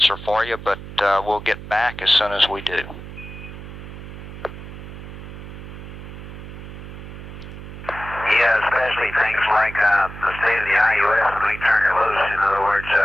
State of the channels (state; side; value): noise; right; hum, 12 dB below the sound